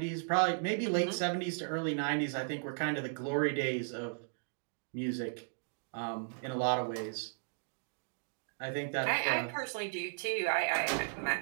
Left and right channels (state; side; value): silent; left; digital silence